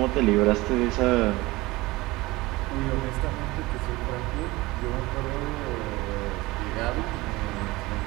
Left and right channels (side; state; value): left; quieter; 20.8 dB